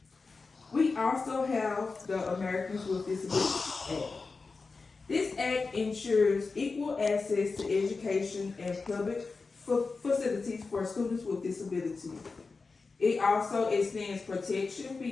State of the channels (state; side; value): quieter; right; 4.2 dB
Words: We also have the Americans with Disabilities Act. This act ensures equal access to education and public facilities for students with disabilities. It also extends protection